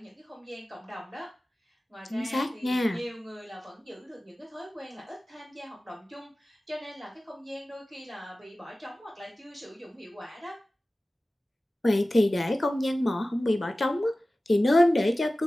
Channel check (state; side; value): normal; both; correlation 0.96